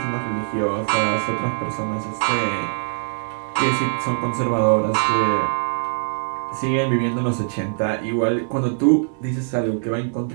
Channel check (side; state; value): left; silent; 64 dB below the other